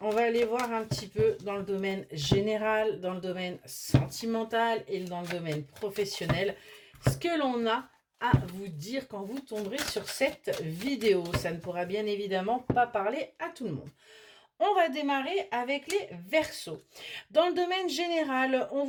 va aller voir un petit peu dans le domaine général, dans le domaine sentimental et dans le domaine professionnel, ce que l'on a à vous dire quand vous tomberez sur cette vidéo. Ça ne pourra bien évidemment pas parler à tout le monde. On va démarrer avec les Verseaux. Dans le domaine général, on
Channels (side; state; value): both; identical; correlation 1.00